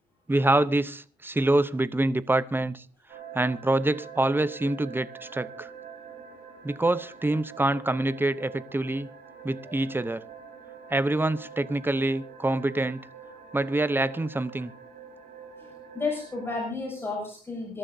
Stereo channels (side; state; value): both; normal; correlation 0.85